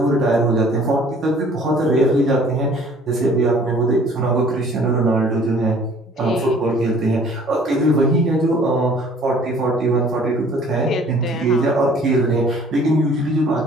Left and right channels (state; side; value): normal; both; correlation 0.54